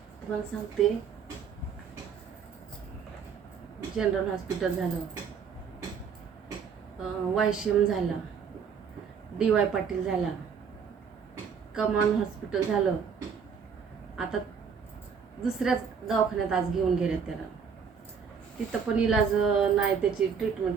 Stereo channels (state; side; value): quieter; left; 6.5 dB